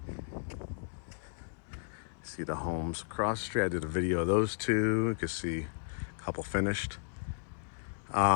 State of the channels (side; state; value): right; silent; 55 dB below the other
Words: See the homes across the street. I did a video of those two. You can see a couple finished.